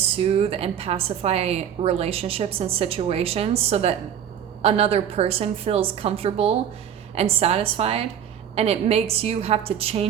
and pacify relationships and situations so that another person feels comfortable and satisfied, and it makes you have to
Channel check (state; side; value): quieter; left; 9.1 dB